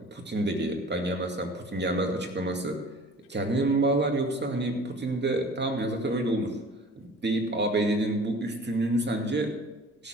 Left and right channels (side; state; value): both; normal; correlation 0.46